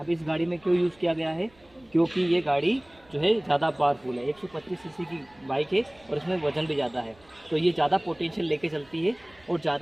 इस गाड़ी में क्यों यूज़ किया गया है? क्योंकि ये गाड़ी जो है ज़्यादा पावरफुल है, 125 सीसी की बाइक है और इसमें वज़न भी ज़्यादा है, तो ये ज़्यादा पोटेंशियल लेके चलती है। और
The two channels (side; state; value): right; noise; rumble, 30 dB below the sound